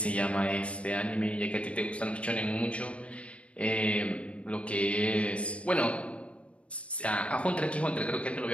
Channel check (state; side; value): late; right; 0.062 ms